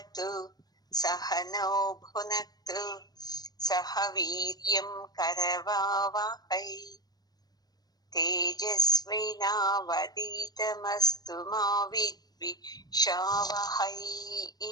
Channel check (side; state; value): right; late; 0.19 ms